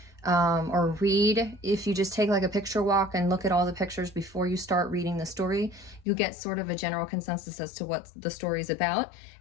or read, if you just take like a picture walk and look at all the pictures before you start reading the story, you get sort of a general consensus as to what the story is about,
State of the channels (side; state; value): right; drops out; at 6.1 s